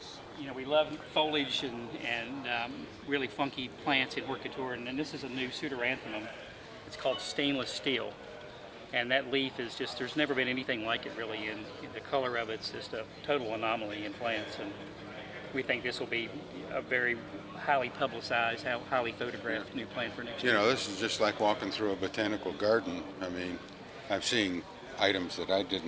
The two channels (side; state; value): both; identical; correlation 1.00